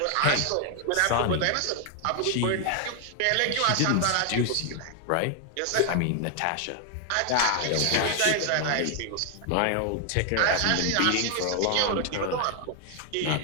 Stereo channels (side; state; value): both; different; correlation 0.00